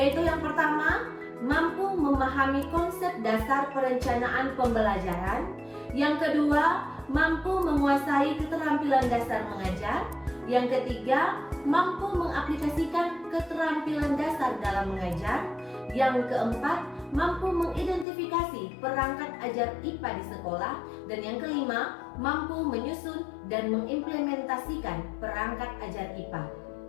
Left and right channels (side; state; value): right; drops out; at 18.1 s